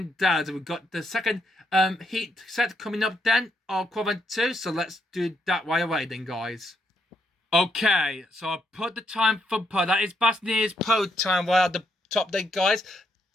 out. We've got the second heat set coming up then, of quadrant 2, so let's do that right away then, guys. Okay, so I put the time for pole. That is Bastianini's pole time right at the top there, guys.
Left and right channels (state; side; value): normal; both; correlation 0.77